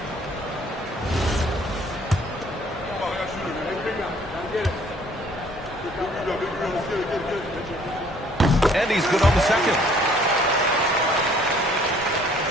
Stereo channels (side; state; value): both; normal; correlation 0.58